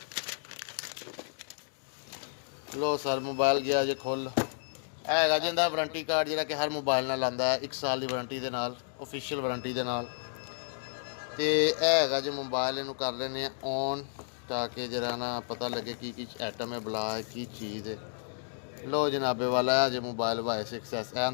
लो सर मोबाइल गया जो खुल है जिंदा वारंटी कार्ड जोड़ा कि हर मोबाइल नाल आंदा है 1 साल की वारंटी के नाल, ऑफिशियल वारंटी के नाल। तो है जो मोबाइल इनू कर लेने ऑन, ताकि जरा ना पता लगे की आइटम है, बला है की चीज़ है। लो जनाबे वाला है जो mobile Y 6S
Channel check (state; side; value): silent; right; digital silence